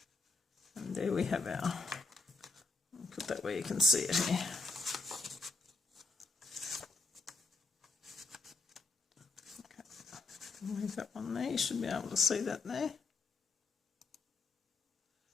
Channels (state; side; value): quieter; right; 3.8 dB